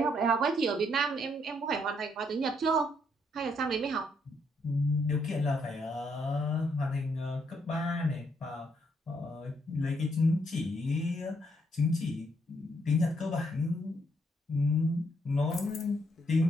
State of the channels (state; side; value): normal; both; correlation 0.73